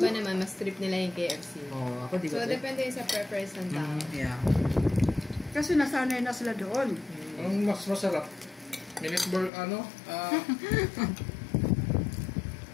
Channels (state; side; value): drops out; right; at 9.5 s